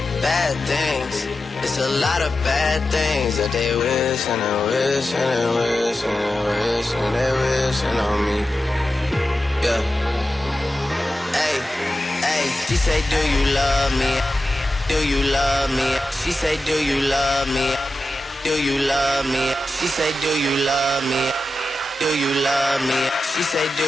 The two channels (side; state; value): both; normal; correlation 0.92